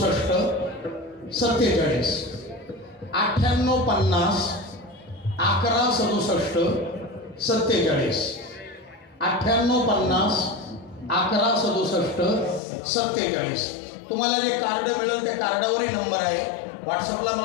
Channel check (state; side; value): drops out; right; at 12.6 s